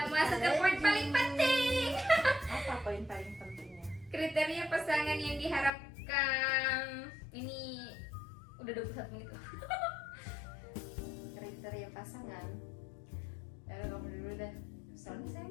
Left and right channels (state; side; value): drops out; right; at 5.7 s